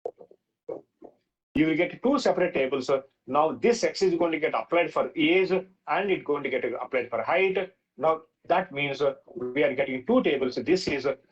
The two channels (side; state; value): both; identical; correlation 1.00